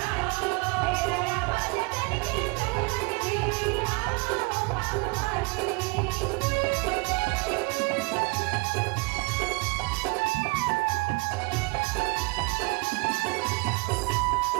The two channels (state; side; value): quieter; left; 28.8 dB